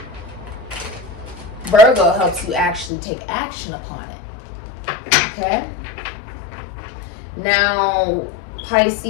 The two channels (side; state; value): right; drops out; at 2.9 s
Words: Virgo helps you actually take action upon it. Okay? Now,